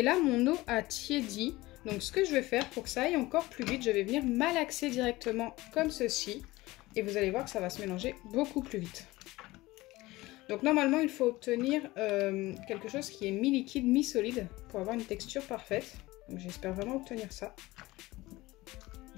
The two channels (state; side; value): quieter; right; 19.5 dB